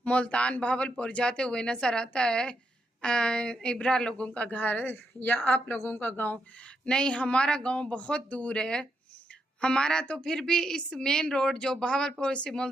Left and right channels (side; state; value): both; normal; correlation 0.82